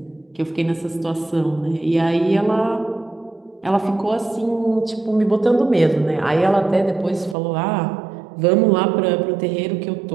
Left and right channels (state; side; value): drops out; left; at 7.4 s